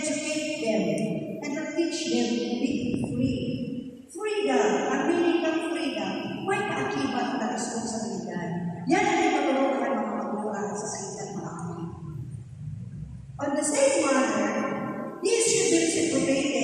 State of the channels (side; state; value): both; identical; correlation 1.00